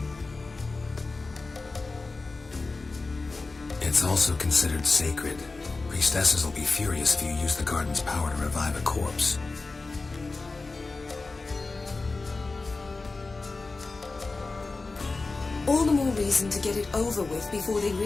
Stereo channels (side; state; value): right; quieter; 3.7 dB